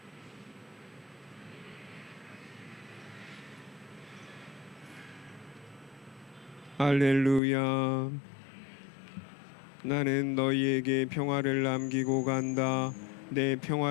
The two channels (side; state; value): right; drops out; at 7.4 s